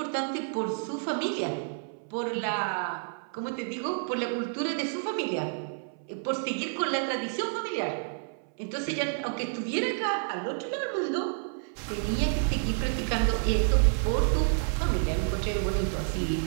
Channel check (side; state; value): left; silent; 58 dB below the other